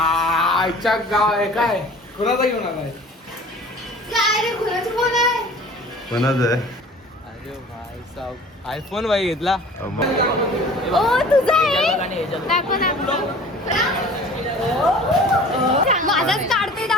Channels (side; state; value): both; normal; correlation 0.45